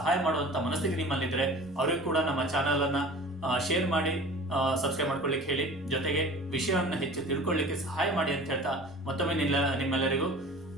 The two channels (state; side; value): normal; both; correlation 0.42